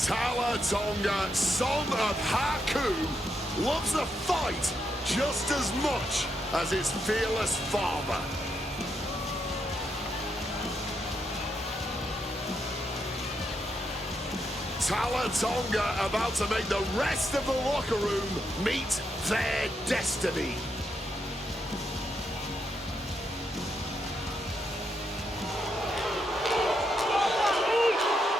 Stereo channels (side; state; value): both; normal; correlation 0.81